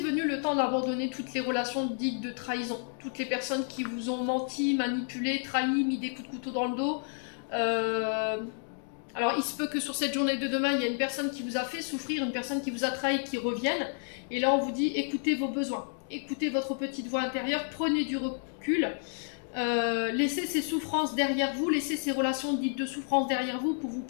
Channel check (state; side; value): silent; right; 57 dB below the other